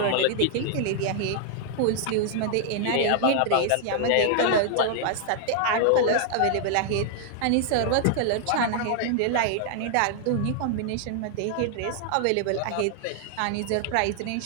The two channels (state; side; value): different; both; correlation -0.01